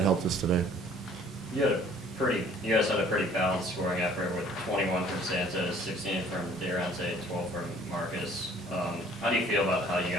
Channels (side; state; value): both; normal; correlation 0.55